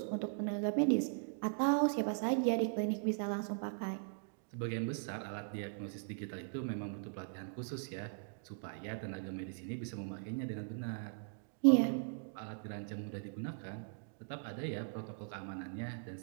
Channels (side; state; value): left; silent; digital silence